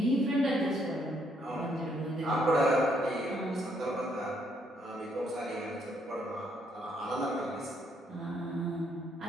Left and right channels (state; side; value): normal; both; correlation 0.71